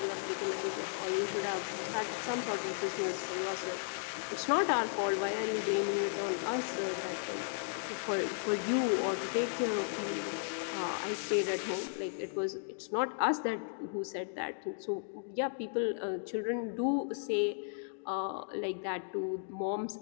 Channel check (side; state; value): right; silent; digital silence